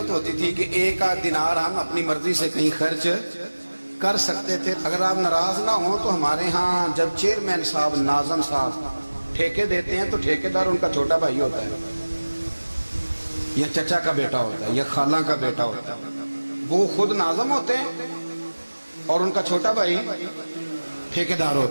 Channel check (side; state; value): both; inverted; correlation -1.00